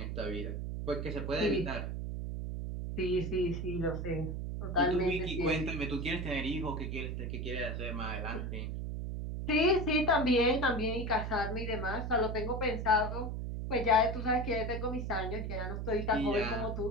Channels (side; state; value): right; noise; hum, 4 dB below the sound